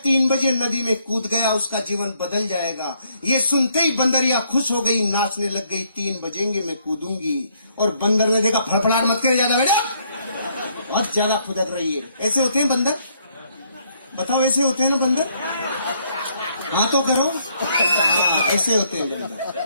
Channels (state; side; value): inverted; both; correlation -0.70